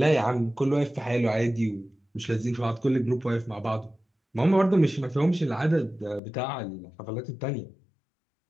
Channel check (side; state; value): right; drops out; at 6.2 s